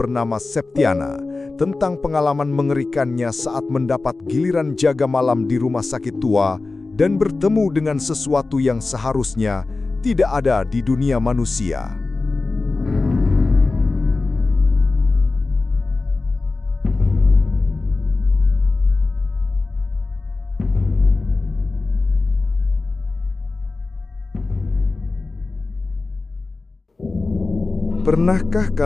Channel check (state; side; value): quieter; right; 3.6 dB